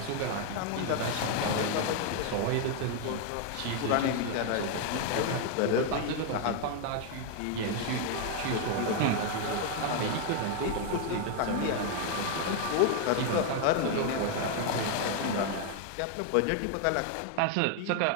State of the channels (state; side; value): different; both; correlation 0.00